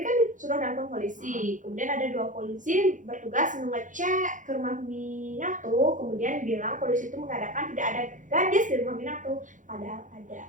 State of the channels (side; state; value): left; late; 0.37 ms